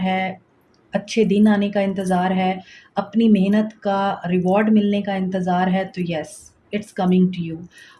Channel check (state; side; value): identical; both; correlation 1.00